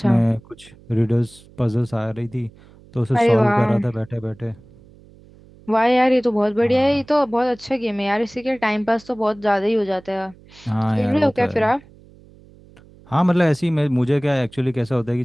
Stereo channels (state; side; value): noise; right; hum, 25 dB below the sound